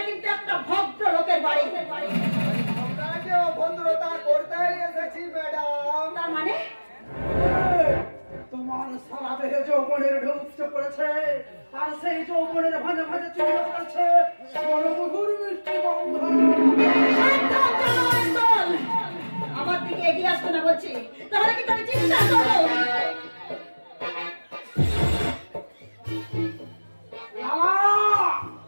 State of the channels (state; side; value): inverted; both; correlation -1.00